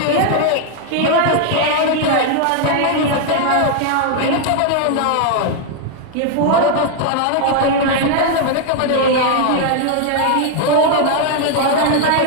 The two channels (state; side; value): different; both; correlation 0.00